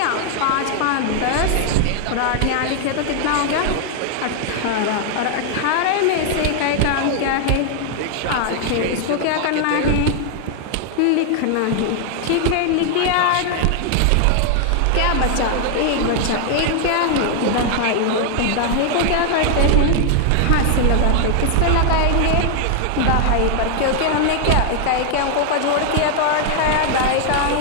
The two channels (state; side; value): different; both; correlation 0.00